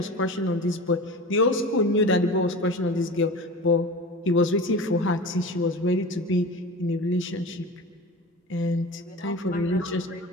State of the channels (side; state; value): both; normal; correlation 0.33